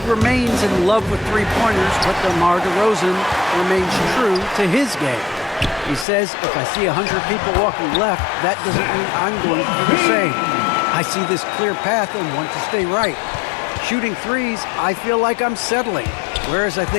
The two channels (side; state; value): right; drops out; at 6.1 s